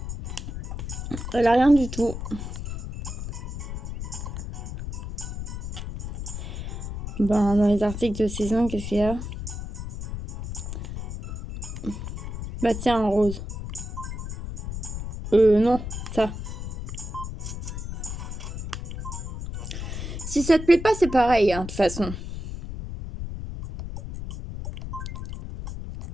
Elle a rien du tout. Ben, dans les articles de saison, qu'est-ce qu'il y a? Bah tiens, un rose. Non, ça. Si ça te plaît pas, c'est pareil, hein, de toute façon.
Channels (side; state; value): left; noise; rumble, 7 dB below the sound